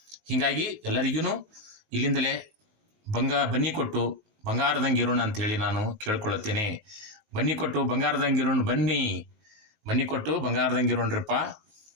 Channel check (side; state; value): left; late; 19 ms